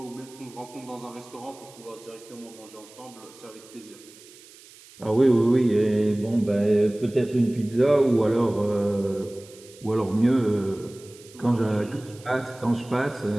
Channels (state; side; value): noise; right; hiss, 22 dB below the sound